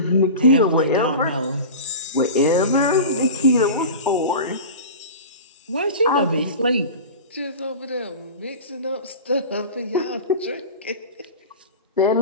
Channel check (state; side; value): inverted; both; correlation -0.32